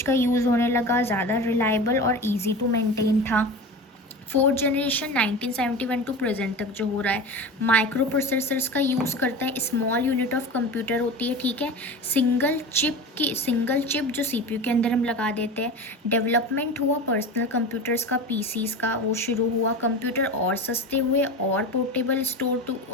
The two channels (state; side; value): normal; both; correlation 0.30